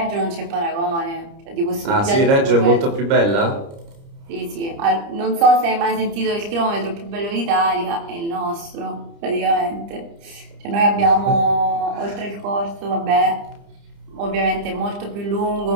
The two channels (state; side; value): late; left; 30 ms